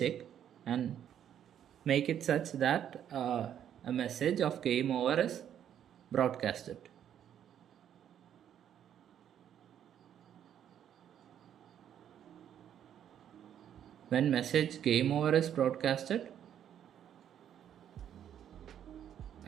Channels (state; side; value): quieter; left; 9.8 dB